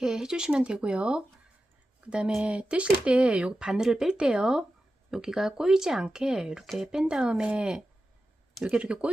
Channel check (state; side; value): normal; both; correlation 0.92